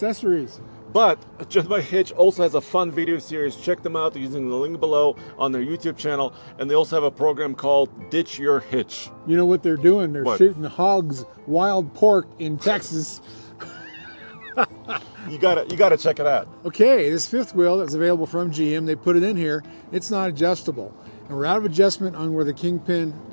But Just by Hitch also has a fun video series. Check them out using the link below on their YouTube channel. And they also have a program called Ditch Your Hitch. You know what they're doing? They're What? shooting hogs, wild pork in Texas. You gotta check it out. Okay, this fifth wheel that's available from GM, they put it in here. It's not adjustable. And we're out of adjustment on where the kingpin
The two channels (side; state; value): both; inverted; correlation -1.00